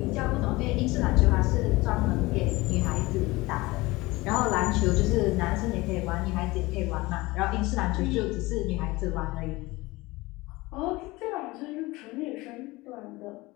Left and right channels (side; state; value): right; quieter; 21.3 dB